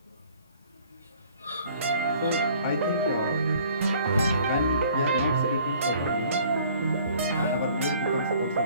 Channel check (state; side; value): inverted; both; correlation -0.55